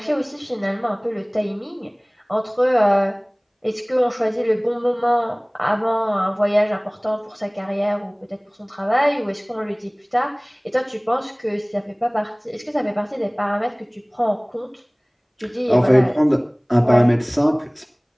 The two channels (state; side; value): identical; both; correlation 1.00